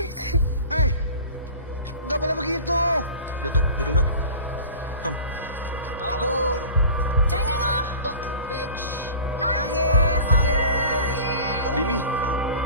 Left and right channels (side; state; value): both; inverted; correlation -0.39